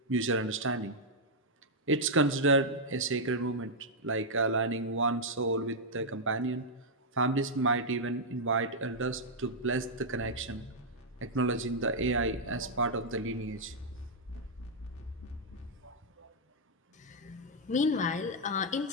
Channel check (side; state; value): both; normal; correlation -0.05